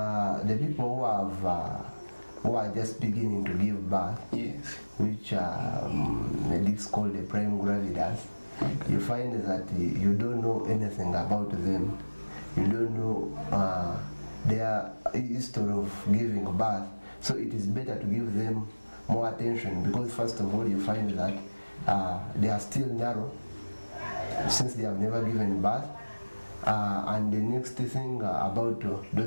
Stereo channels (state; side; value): inverted; both; correlation -1.00